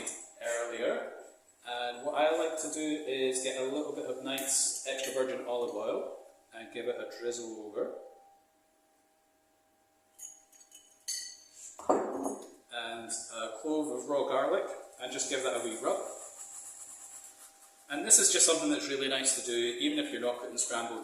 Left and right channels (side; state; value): both; identical; correlation 1.00